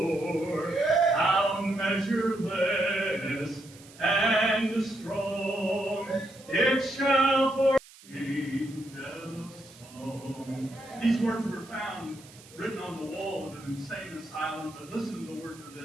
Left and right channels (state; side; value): noise; right; hiss, 22 dB below the sound